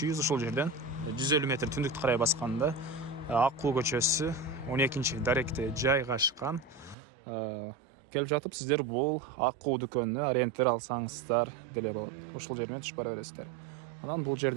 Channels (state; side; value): drops out; left; at 7.0 s